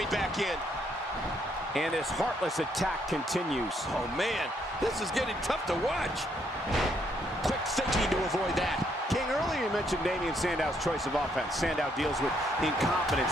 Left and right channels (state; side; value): normal; both; correlation 0.72